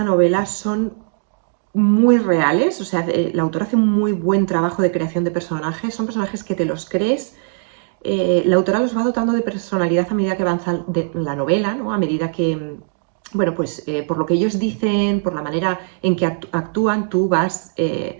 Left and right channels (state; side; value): silent; left; digital silence